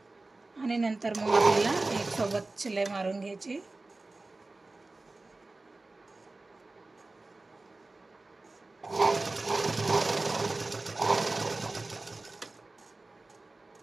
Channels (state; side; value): quieter; left; 3.2 dB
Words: आणि नंतर मग आपल्याला एक सोबत शिलाई मारून घ्यायची.